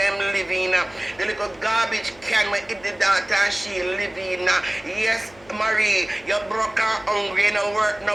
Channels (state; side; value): noise; left; hum, 27 dB below the sound